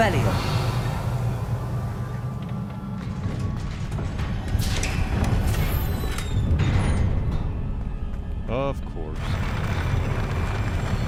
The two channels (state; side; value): identical; both; correlation 1.00